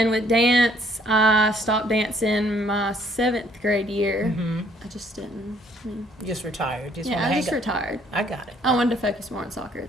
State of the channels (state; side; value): normal; both; correlation 0.63